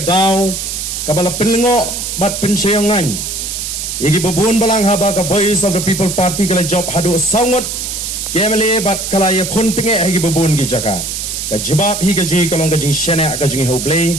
daw kabala penlengo bat pensyongan yagi babun balang haba ka Voice of the People Party kala job hadu sangot kemele bat kala ya kontenge hagi babun gi jaka ka jubab hi ka jingi kalong ka jingi shena ka jingi oblay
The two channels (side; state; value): right; noise; hiss, 4 dB below the sound